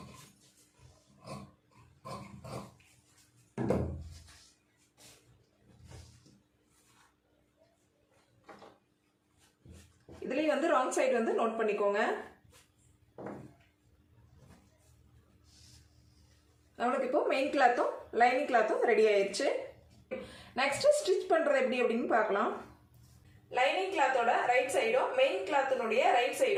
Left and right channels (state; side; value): identical; both; correlation 1.00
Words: இதுலயும் வந்து ராங் சைடு வந்து நோட் பண்ணிக்கோங்க. நம்மளுக்கு இப்போ மெயின் கிளாத்தும் லைனிங் கிளாத்தும் ரெடி ஆயிடுச்சு. நெக்ஸ்ட் ஸ்டிச் பண்றது எப்படி அப்படின்னு பார்க்கலாம். லைனிங் கிளாத்தோட ரைட் சைடும் மெயின் கிளாத்தினுடைய ரைட்